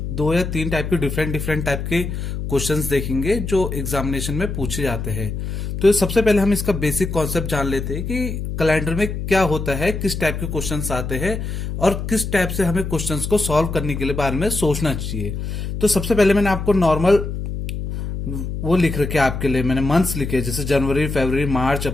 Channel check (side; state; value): left; noise; hum, 5 dB below the sound